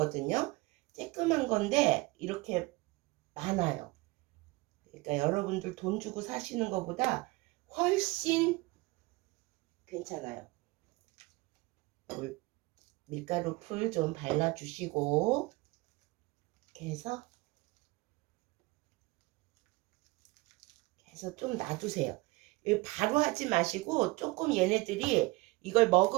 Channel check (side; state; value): left; quieter; 22.7 dB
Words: 쬐끔한 건데 이렇게 많아요. 그러니까 여러분들 돈 주고 사시는 것보다 훨씬 괜찮아요. 밀가루 풀 좀 발라주시고 이렇게 해서 좀 놔두세요. 바로 하지 마시고 조금 얘네들이 이걸